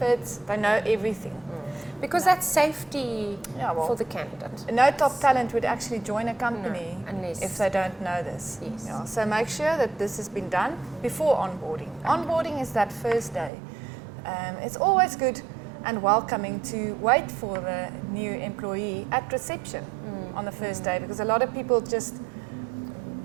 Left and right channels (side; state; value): left; drops out; at 13.5 s